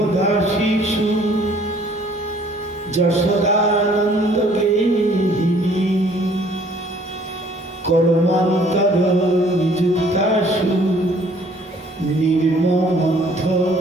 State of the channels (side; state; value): both; normal; correlation 0.58